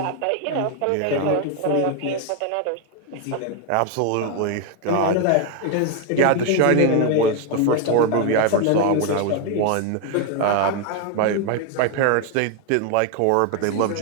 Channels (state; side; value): different; both; correlation 0.01